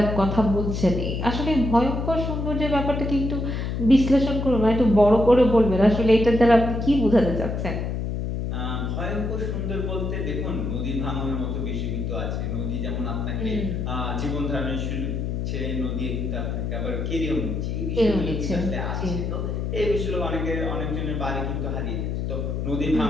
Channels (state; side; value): noise; left; hum, 2 dB below the sound